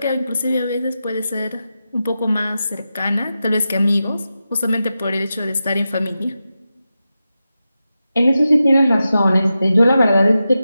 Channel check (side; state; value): both; inverted; correlation -0.91